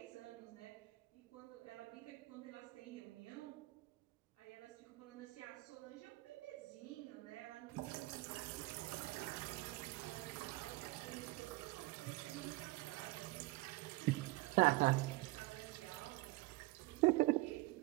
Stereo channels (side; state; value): left; quieter; 21.2 dB